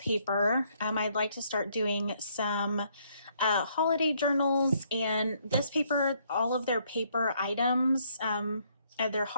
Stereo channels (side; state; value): both; inverted; correlation -0.69